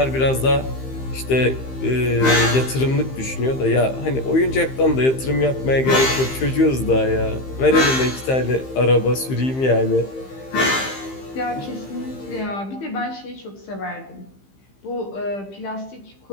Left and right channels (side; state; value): right; late; 15 ms